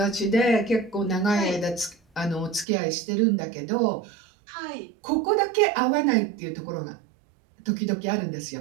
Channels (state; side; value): drops out; left; at 2.7 s